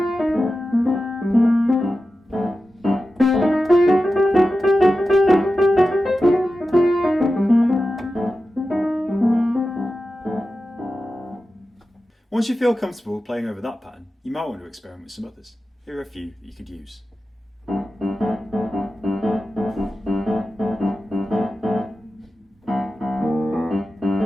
Once you feel comfortable playing over that pattern, you might want to experiment with some others. Here are a few that you could use.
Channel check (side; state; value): both; normal; correlation 0.93